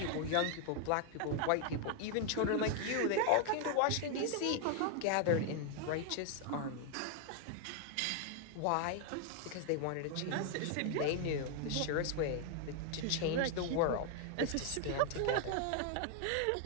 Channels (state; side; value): different; both; correlation 0.00